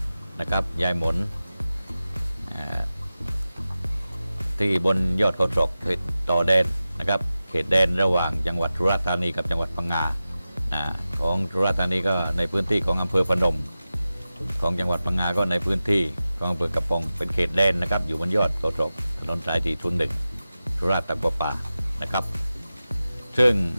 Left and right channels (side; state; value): both; inverted; correlation -0.94